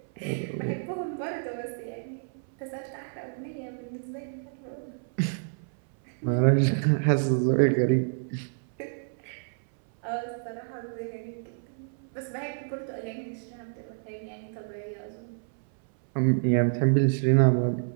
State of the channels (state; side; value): silent; left; 59 dB below the other